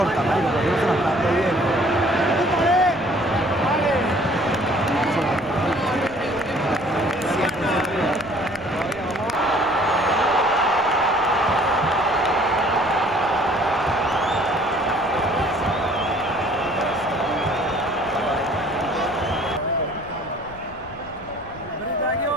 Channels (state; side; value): noise; left; rumble, 19 dB below the sound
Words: marico, porque no se la está dando bien.